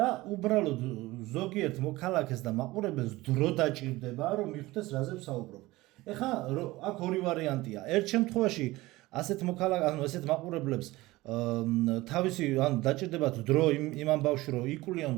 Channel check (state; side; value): quieter; left; 19.3 dB